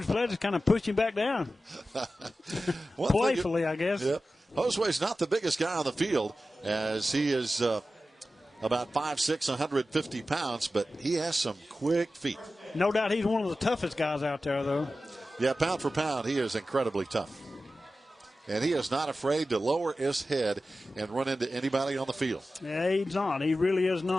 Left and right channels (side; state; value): both; normal; correlation 0.94